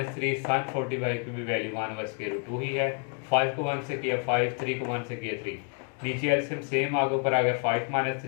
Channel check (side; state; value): right; quieter; 38.5 dB